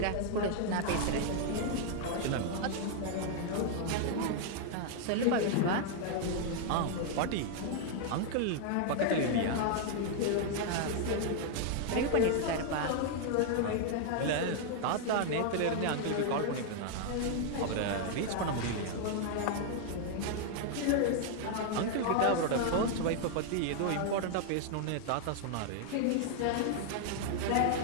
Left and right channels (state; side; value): different; both; correlation 0.00